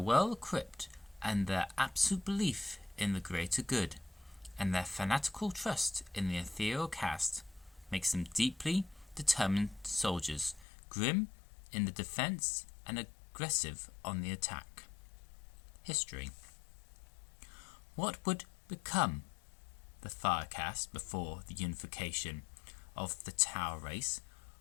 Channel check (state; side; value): drops out; right; at 10.7 s